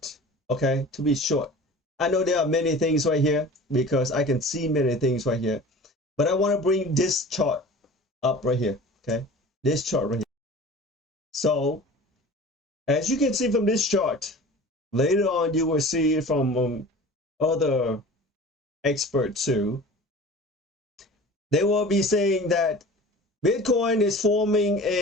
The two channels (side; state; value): both; normal; correlation 0.40